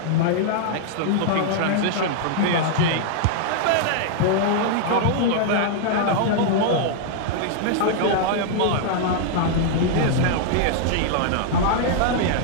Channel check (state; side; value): different; both; correlation -0.01